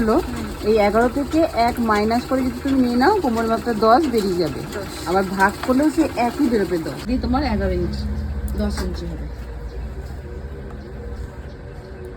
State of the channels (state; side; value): identical; both; correlation 1.00